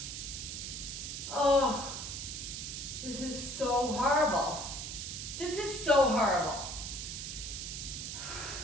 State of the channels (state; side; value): noise; right; hiss, 6 dB below the sound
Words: Oh, this is so horrible. This is so horrible.